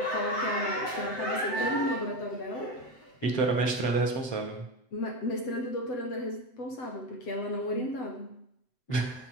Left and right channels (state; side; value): late; right; 7.8 ms